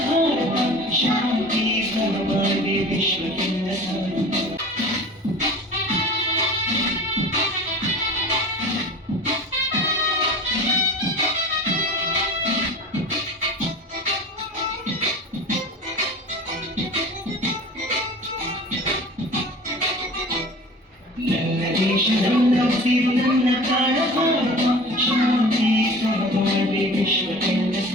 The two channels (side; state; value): both; normal; correlation 0.39